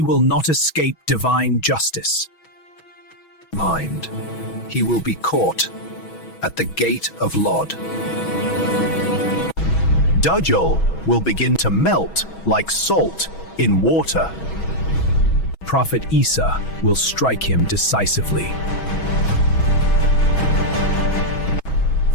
not escape divine justice. He will be caught at the gate of Lod. Dajjal will begin to melt like salt in water. Prophet Isa will strike him decisively.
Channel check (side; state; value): right; late; 6.2 ms